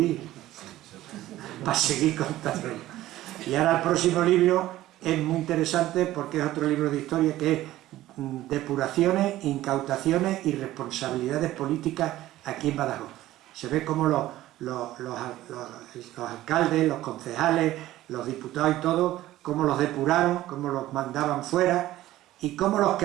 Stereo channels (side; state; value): left; quieter; 15.2 dB